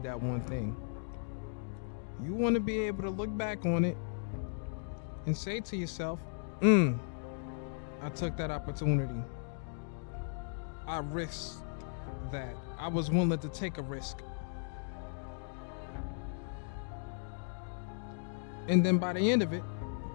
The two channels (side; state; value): right; silent; digital silence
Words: that one thing. You want to be able to look back on it and say to yourself, I took that opportunity. I risked that. I was willing to take a risk. And then by the end of it,